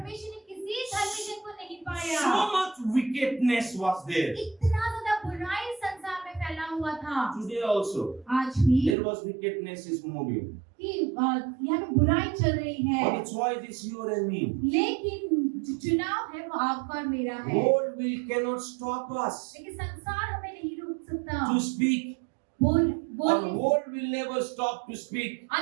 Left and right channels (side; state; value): left; drops out; at 9.0 s